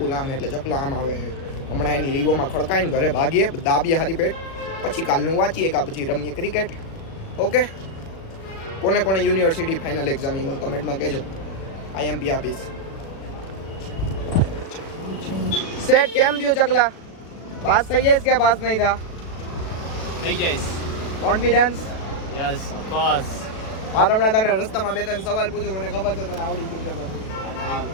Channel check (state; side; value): late; right; 36 ms